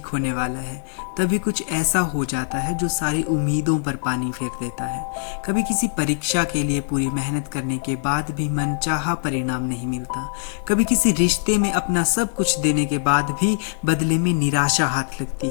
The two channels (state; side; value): silent; right; 63 dB below the other